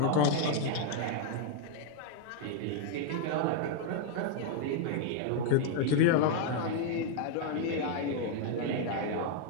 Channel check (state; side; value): different; both; correlation 0.00